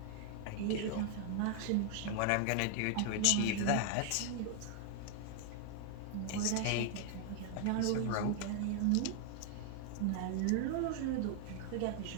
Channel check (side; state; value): both; different; correlation 0.00